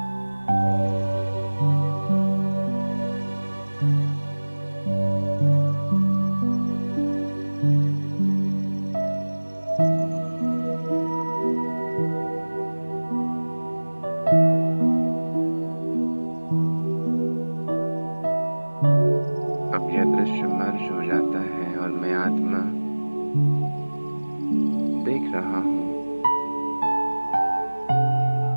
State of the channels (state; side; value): inverted; both; correlation -1.00